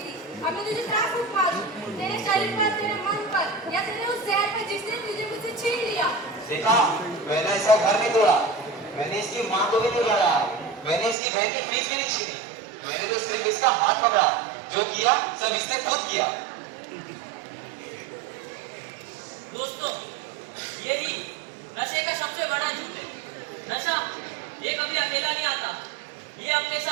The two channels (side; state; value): left; drops out; at 11.2 s